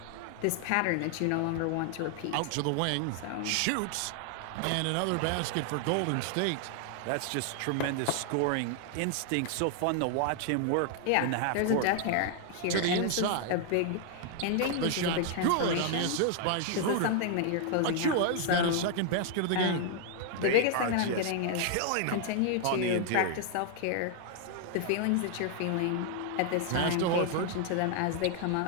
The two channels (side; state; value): both; different; correlation 0.00